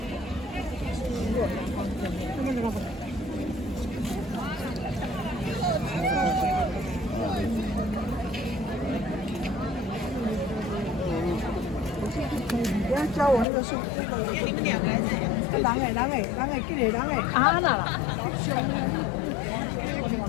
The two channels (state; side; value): drops out; right; at 13.5 s